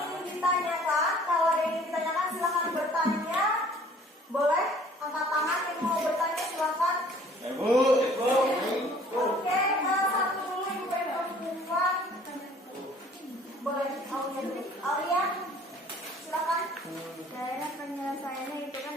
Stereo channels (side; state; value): both; normal; correlation 0.53